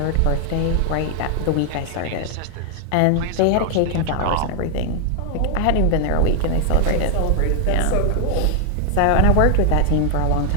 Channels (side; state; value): both; different; correlation 0.00